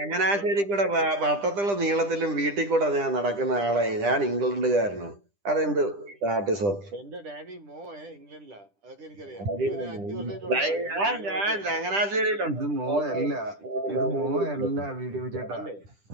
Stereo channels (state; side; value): late; left; 10 ms